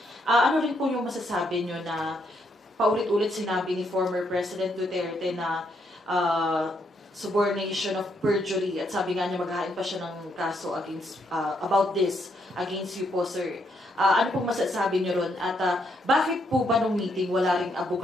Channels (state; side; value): normal; both; correlation 0.75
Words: Ano rin po yung masasabi nyo na paulit-ulit sinabi ni former President Duterte na subornation of perjury at sabi nga niya maghahain pa siya ng kaso against about this against you po, sir. Ano pong masasabi niyo ron? At bakit po ba nung meeting wala ring